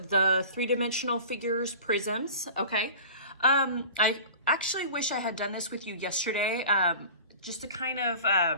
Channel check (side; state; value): both; inverted; correlation -0.39